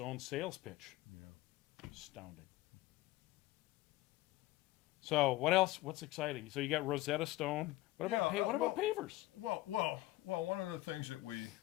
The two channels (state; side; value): quieter; right; 17.8 dB